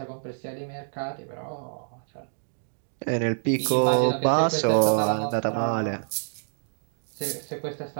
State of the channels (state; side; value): silent; left; digital silence